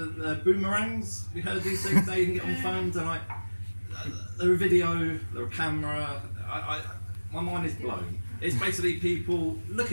boomerangs. We heard these things now you can get on phones, and they're a video, they're a camera. My mind is blown. It's basically people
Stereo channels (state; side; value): inverted; both; correlation -1.00